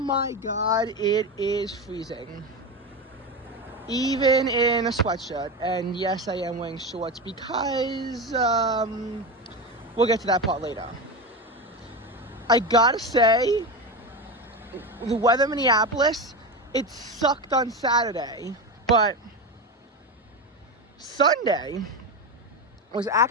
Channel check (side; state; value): both; normal; correlation 0.19